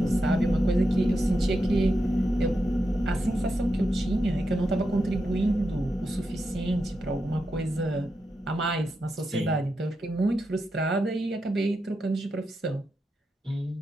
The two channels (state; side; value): normal; both; correlation 0.86